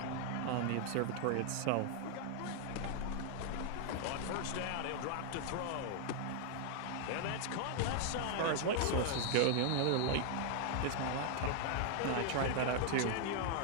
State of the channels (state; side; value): different; both; correlation 0.00